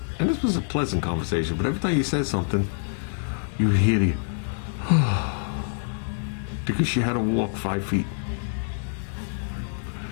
and this was a pleasant conversation, but every time you said something, you would hear the because she had to walk 5 feet.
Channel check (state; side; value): silent; right; 55 dB below the other